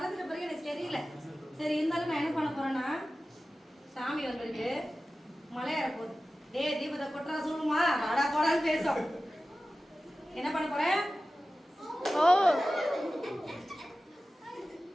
பிறகு எனக்கு தெரியல. சரி இருந்தாலும் நான் என்ன பண்ண போறேன்னா சாமி வந்திருக்கு மலை ஏற போகுது. டேய் தீபத்தை கொட்டுறா சொல்லுமா வாடா போடான்னு பேசும். என்ன பண்ண போறேன்? ஓ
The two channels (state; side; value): normal; both; correlation 0.95